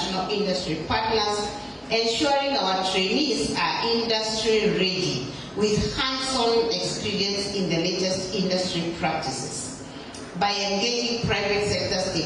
industry partners, ensuring our trainees are industry ready with hands-on experience in the latest industry practices. By engaging private sector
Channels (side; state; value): both; identical; correlation 1.00